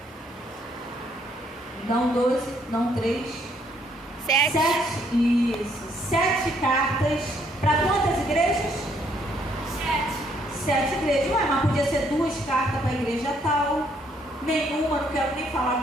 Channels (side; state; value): both; normal; correlation 0.69